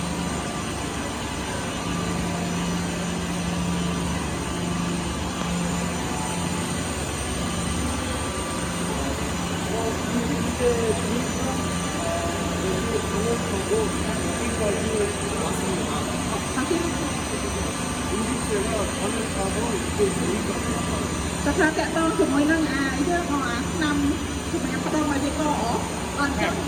តែថាតាក់ទងជាមួយនឹងយើងអាឆ្នាំសម្រាប់ផ្ដុំឲ្យវាកអត់ចឹង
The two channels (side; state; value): both; identical; correlation 1.00